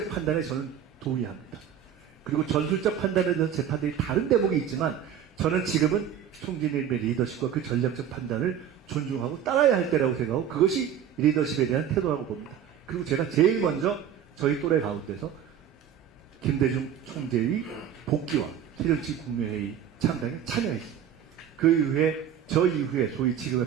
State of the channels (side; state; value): left; quieter; 9.3 dB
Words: 판단에 저는 동의합니다. 그리고 전술적 판단에 대한 재판들이 다른 대목이 있지만 저는 지금은 총재님의 리더십과 그 전략적 판단을 존중하고 따라야 할 때라고 생각하고 그것이 리더십에 대한 태도라고 봅니다. 그리고 제가 제일 먼저 저희 또래 가운데서 김대중 총재의 복귀와 새정치 국민회의 창당에 참여했습니다. 그 이후에 저 이후에 소위 지금의